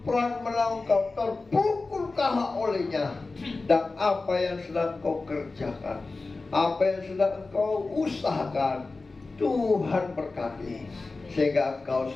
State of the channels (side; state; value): right; quieter; 3.6 dB